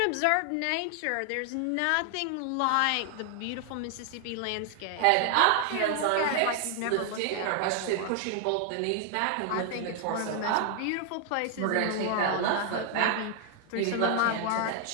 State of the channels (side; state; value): both; different; correlation 0.00